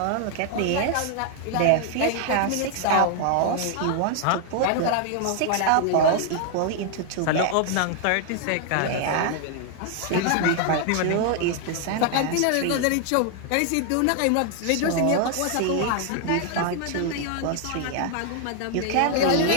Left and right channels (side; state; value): both; different; correlation 0.00